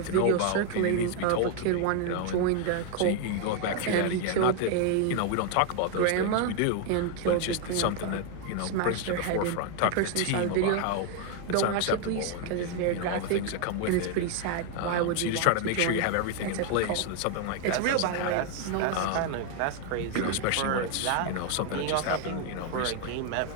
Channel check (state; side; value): different; both; correlation 0.01